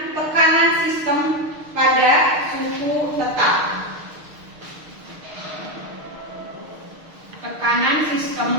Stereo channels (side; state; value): left; late; 6.5 ms